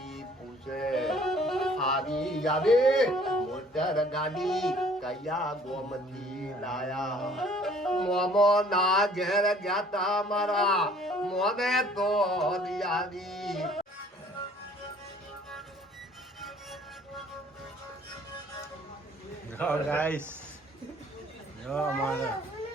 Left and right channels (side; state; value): both; normal; correlation 0.55